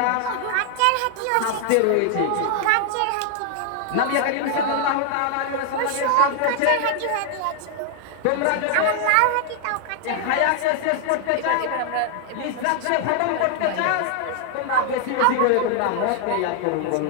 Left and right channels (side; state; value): both; different; correlation 0.00